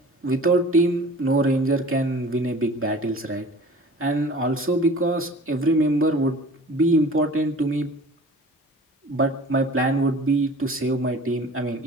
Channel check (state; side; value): normal; both; correlation 0.44